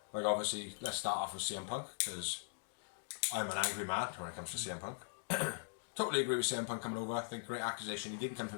Like obviously, let's start off with CM Punk, because I'm an angry man when it comes to CM Punk. Totally agree with CM Punk coming over. I think great accusation. He didn't come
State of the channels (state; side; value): silent; right; digital silence